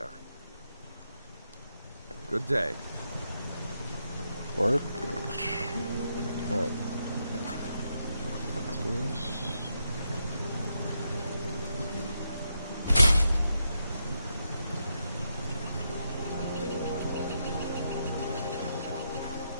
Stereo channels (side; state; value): both; inverted; correlation -0.81